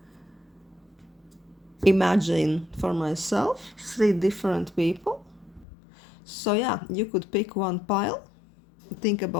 imagine for myself 3 different people. So yeah, you could pick one pile, think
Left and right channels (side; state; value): right; drops out; at 5.7 s